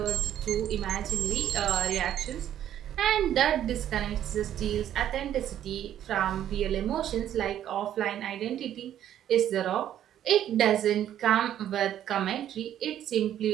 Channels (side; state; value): left; quieter; 11.0 dB